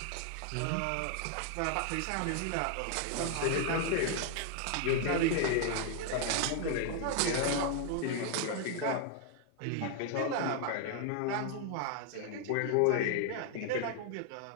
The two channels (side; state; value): both; different; correlation 0.00